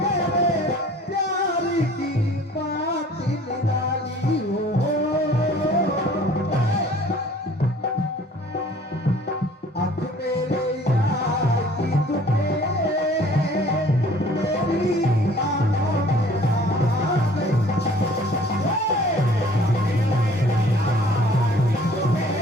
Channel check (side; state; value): both; normal; correlation 0.52